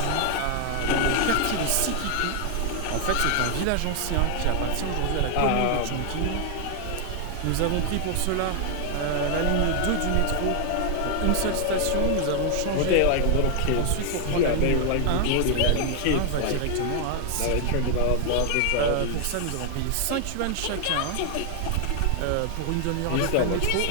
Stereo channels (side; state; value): both; different; correlation 0.00